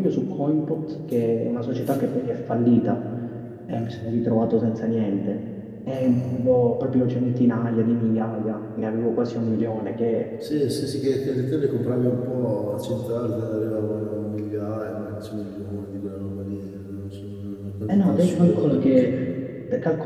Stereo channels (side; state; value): both; identical; correlation 1.00